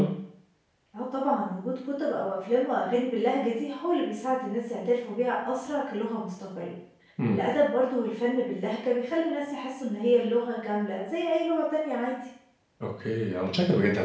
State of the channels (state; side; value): identical; both; correlation 1.00